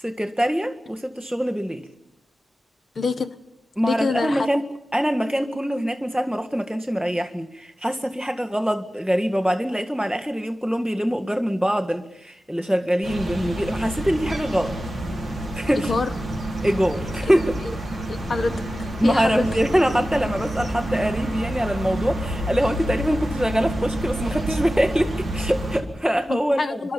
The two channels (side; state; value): both; normal; correlation 0.95